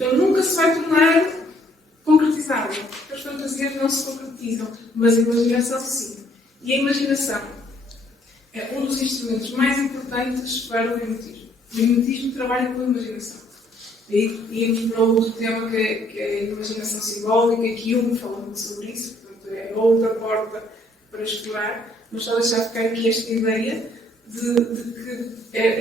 nunca se vai tornar concretizável. As fantasias não se concretizam, mas a imaginação sim. E a imaginação é um dos instrumentos mais importantes para o mimetismo. O mimetismo trabalha com a imaginação. E íamos para outro tema que é a imaginação simbólica, que Jung fala muito sobre isso, portanto é outra porta para explorar, mas só deixar ficar aqui esta ideia de que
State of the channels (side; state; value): both; normal; correlation 0.65